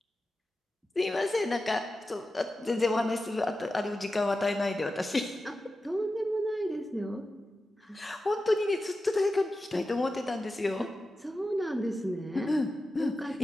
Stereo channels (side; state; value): both; normal; correlation 0.92